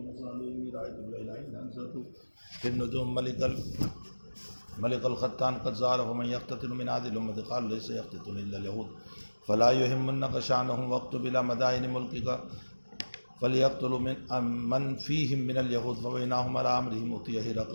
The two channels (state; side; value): inverted; both; correlation -1.00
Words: إني رأيت الليلة حين أنزلت في النجوم ملك الختان قد زال فمن يقتتل من هذه الأمة قال ليس يقتتل إلا اليهود فلا يهمنك شأنهم واكتب إلى مدائن ملكك فليقتلوا من فيهم من اليهود فبينهم على أمرهم أتي